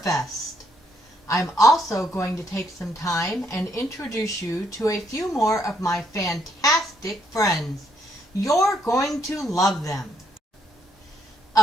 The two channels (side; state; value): both; normal; correlation 0.73